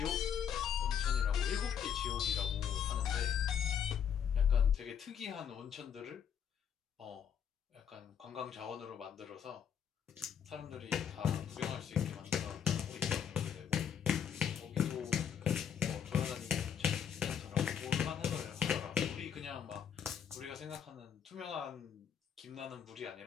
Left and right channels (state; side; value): quieter; right; 8.3 dB